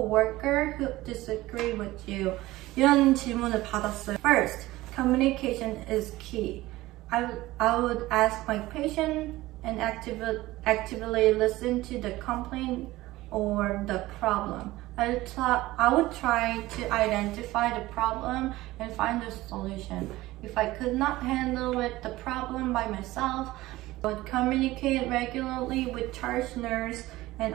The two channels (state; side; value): quieter; left; 17.9 dB